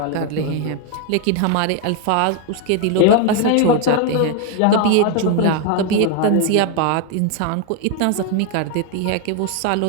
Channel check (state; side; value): different; both; correlation 0.01